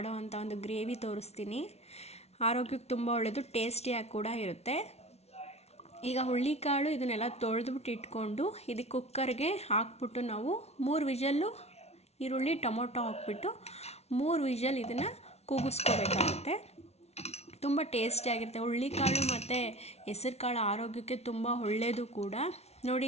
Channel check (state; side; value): late; right; 0.31 ms